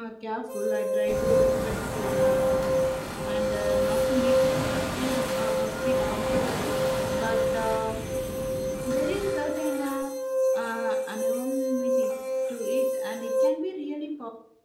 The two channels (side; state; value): both; identical; correlation 1.00